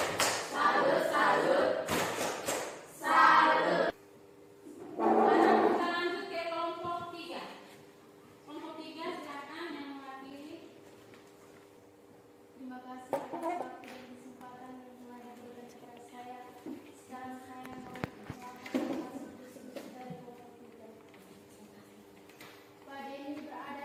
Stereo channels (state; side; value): identical; both; correlation 1.00